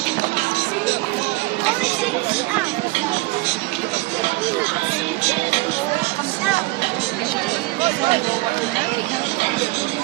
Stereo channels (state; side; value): quieter; left; 21.8 dB